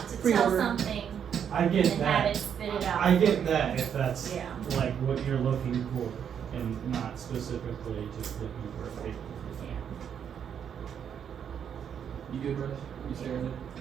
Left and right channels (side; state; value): left; quieter; 8.2 dB